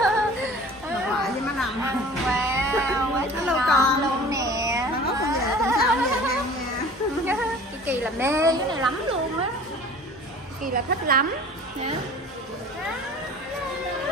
Bà ngoại với má Năm. Wow, quá Hello ngon con luôn nè. Nó ngốc con về tuần sau về ăn nha. Kỳ là mê cái này lắm luôn á. Kỳ là thích lắm nha.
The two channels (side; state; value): both; normal; correlation 0.44